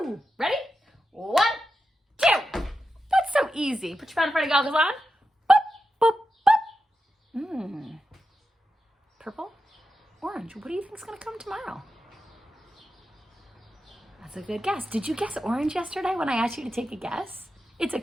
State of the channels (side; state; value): both; normal; correlation 0.89